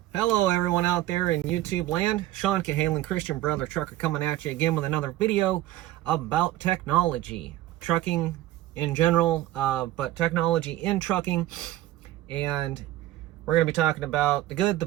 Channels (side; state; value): left; quieter; 15.2 dB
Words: Hello everyone out there in YouTube land. Sean Cahalan, Christian Brother Trucker, coming at you again with another video about technology. Trucking in general, but technology in trucking. And we're going to be talking about the good, the